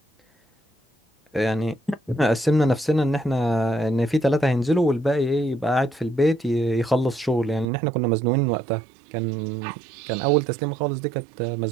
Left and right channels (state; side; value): drops out; left; at 7.7 s